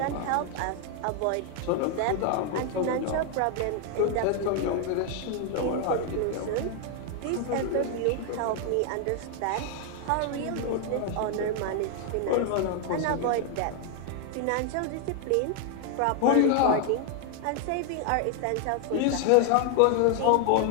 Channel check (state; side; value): different; both; correlation 0.00